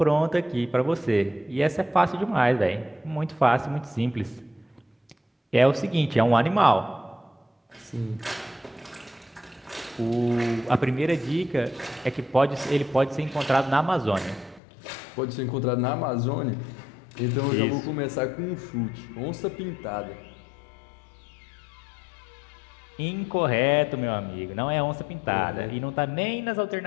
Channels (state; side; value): drops out; right; at 14.6 s